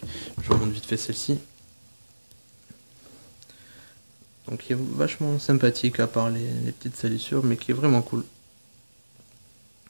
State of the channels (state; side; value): inverted; both; correlation -1.00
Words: Je remonte vite fait celle-ci. Donc qui est vachement sympathique à part les petites salissures, mais qui est vraiment cool.